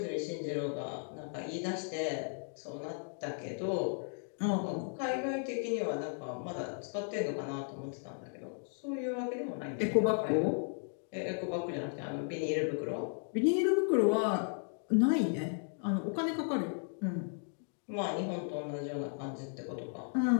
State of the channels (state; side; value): silent; right; 54 dB below the other